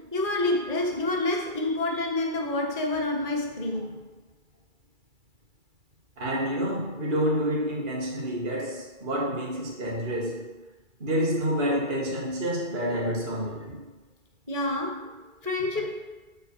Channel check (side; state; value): left; late; 2.3 ms